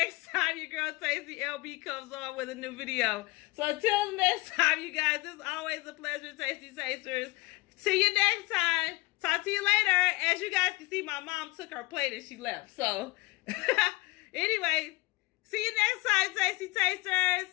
time your girl Tasty LB comes on with a new video. So until the next time, you guys, it's always a pleasure, Tasty Tasters. See you next time. Talk to you later. As you guys can see, my mom took her plate and she left. So anyway, see you next time, Tasty Tasters.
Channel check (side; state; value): right; quieter; 22.9 dB